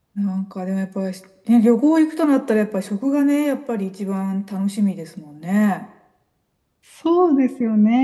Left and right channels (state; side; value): identical; both; correlation 1.00